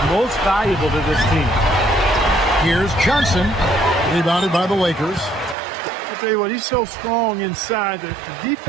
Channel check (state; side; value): drops out; left; at 5.6 s